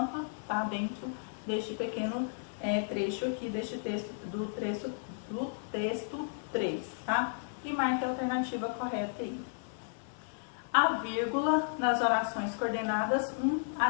tá dentro deste pequeno trecho aqui, deste texto, do texto 3, tá? E marque a alternativa correta aí. A vírgula nas orações coordenadas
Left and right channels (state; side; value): silent; right; digital silence